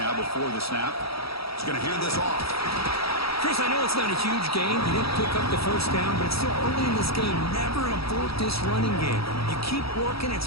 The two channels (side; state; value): right; late; 0.76 ms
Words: before the snap. He's going to hand this off. Chris, I know it's not a huge gain. You didn't pick up the first down, but it's still early in this game. Never abort this running game. You keep working. It's